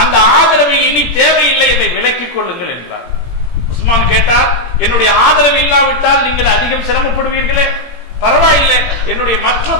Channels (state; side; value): late; right; 17 ms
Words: அந்த ஆதரவை இனி தேவையில்லை, இதை விலக்கிக் கொள்ளுங்கள் என்றார். உஸ்மான் கேட்டார், என்னுடைய ஆதரவு இல்லாவிட்டால் நீங்கள் அதிகம் சிரமப்படுவீர்களே, பரவாயில்லை, என்னுடைய மற்ற